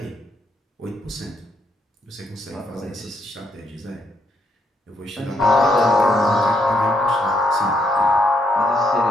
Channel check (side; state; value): both; normal; correlation 0.74